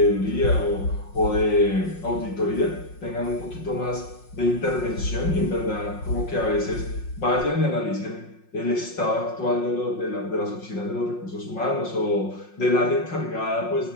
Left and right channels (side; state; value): right; late; 5.6 ms